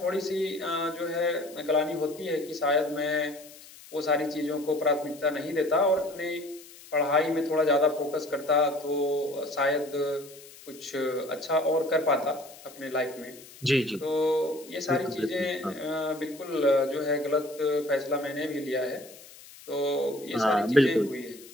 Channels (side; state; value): left; noise; hiss, 20 dB below the sound